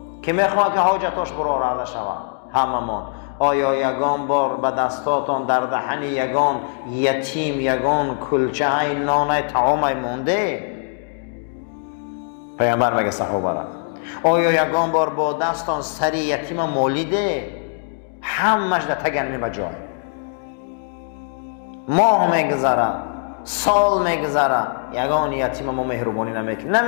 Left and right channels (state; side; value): silent; right; digital silence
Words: کی میخواد که حاجتاش براره شود؟ همه ما. آیا یگان بار به دستاتان در دهن یگان یتیم یگان کلچه های نان طعام مونده؟ پیامبر میگه صحابه را آیا یگان بار با دستان سری یتیم مالیده؟ همش در تگنمی بجای. ماه میگذره، سال میگذره، یگان یتیم ما مهربانی